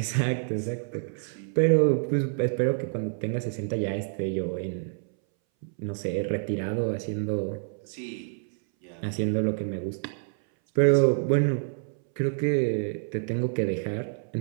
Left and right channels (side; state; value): left; silent; 60 dB below the other